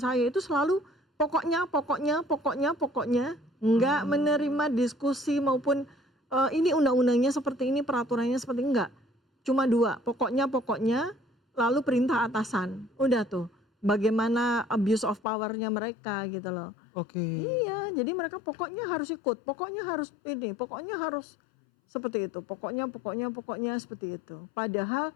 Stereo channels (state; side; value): drops out; right; at 15.2 s